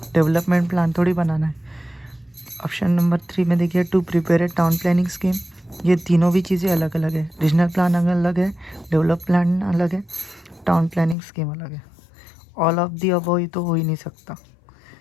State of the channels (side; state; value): right; drops out; at 11.2 s